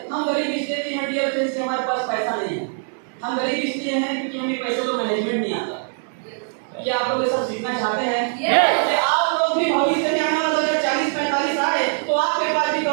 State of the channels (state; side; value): silent; left; digital silence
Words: हम गरीब इसलिए हैं डियर फ्रेंड्स, हमारे पास पैसा नहीं है। हम गरीब इसलिए हैं क्योंकि हमें पैसे का मैनेजमेंट नहीं आता। क्या आप लोग ये सब सीखना चाहते हैं? कि आप लोग भी भविष्य में आने वाला 2040-45 आए तो आपके पास भी